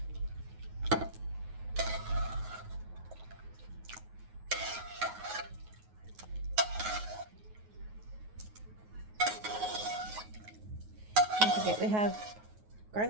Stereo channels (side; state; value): left; late; 9.4 ms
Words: Don't forget we have